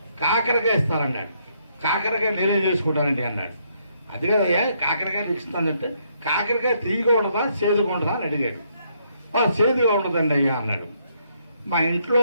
కాకరకాయ ఇస్తానన్నాడు. కాకరకాయ నేనే చేసుకుంటానండి అన్నాడు. అది కదయ్యా కాకరకాయ ఇస్తానంటే కాకరకాయ తీయగా ఉండదా చేదుగా ఉండదా అని అడిగాడు. చేదుగా ఉండదండి అయ్యా అన్నాడు. మా ఇంట్లో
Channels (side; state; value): both; inverted; correlation -0.72